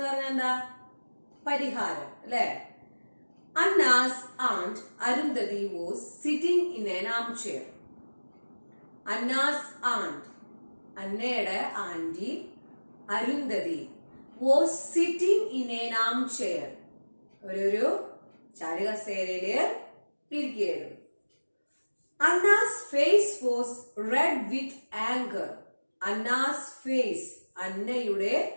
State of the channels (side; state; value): both; inverted; correlation -1.00